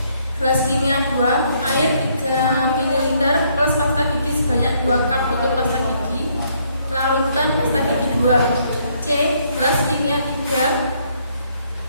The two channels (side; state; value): both; inverted; correlation -0.69